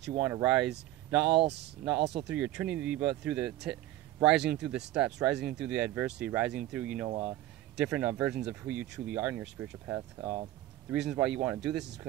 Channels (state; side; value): quieter; left; 14.9 dB